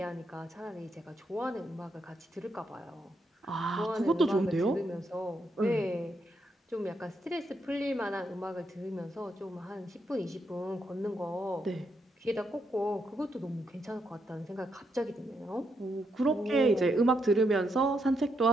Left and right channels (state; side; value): normal; both; correlation 0.80